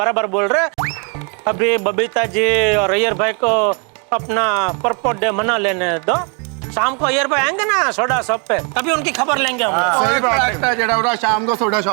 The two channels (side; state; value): left; quieter; 36.3 dB